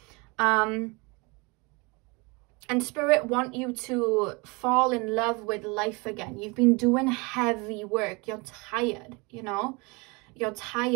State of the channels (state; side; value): quieter; left; 27.8 dB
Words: And Spirit want you to fall in love with life again. You've been doing heavy work. You're tired, you know? You're